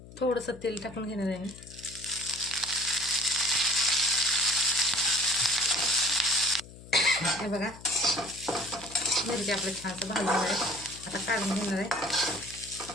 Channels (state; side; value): noise; left; hum, 18 dB below the sound